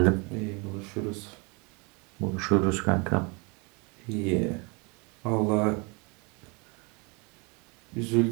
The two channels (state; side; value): quieter; left; 30.6 dB